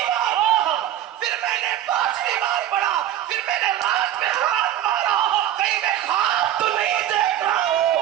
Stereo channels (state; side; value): quieter; left; 11.9 dB